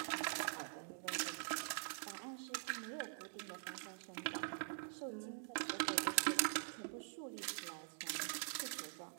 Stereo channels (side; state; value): left; silent; digital silence